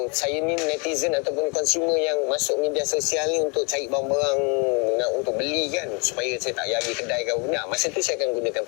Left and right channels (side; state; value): right; quieter; 32.7 dB